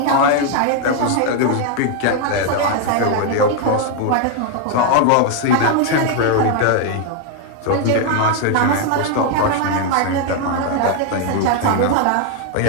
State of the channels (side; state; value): both; different; correlation 0.01